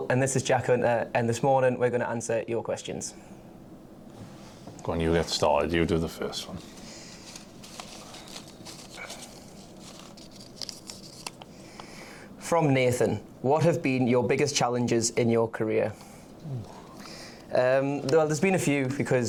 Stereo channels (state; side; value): identical; both; correlation 1.00